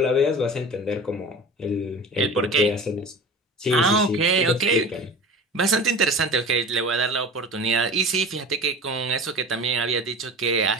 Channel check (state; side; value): normal; both; correlation 0.36